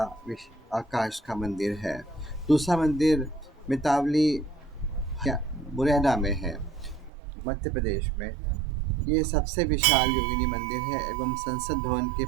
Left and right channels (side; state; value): left; drops out; at 7.1 s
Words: आकाश का मंदिर है। दूसरा मंदिर मितावली मुरैना में है, मध्य प्रदेश में। ये सबसे विशाल योगिनी मंदिर है एवं संसद भवन की